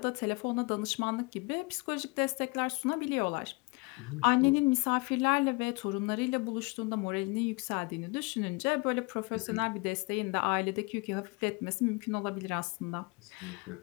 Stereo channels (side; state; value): right; quieter; 27.8 dB